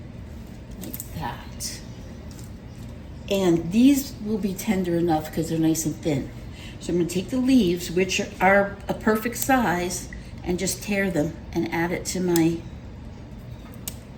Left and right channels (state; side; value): identical; both; correlation 1.00